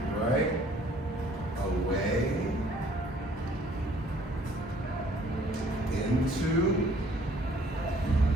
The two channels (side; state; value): both; normal; correlation 0.59